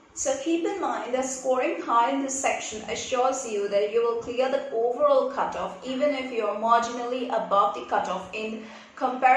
So keep in mind that scoring high in this section assures you that you will clear the overall cutoff even if you are marginally above the cutoff in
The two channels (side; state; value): both; identical; correlation 1.00